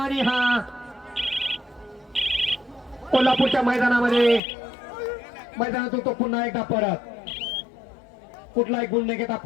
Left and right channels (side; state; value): right; drops out; at 4.4 s